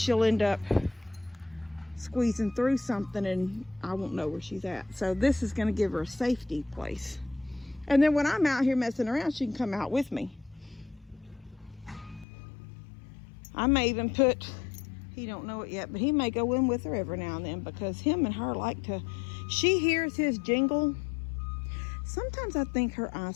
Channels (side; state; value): right; drops out; at 12.2 s